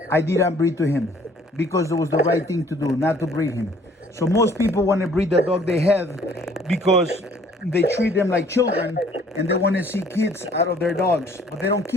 I didn't breed to him because it was the right thing to do, not to breed him. So most people want to breed the dog they have because they treat them like children and they want to see kids out of their dogs. But they don't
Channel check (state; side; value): normal; both; correlation 0.58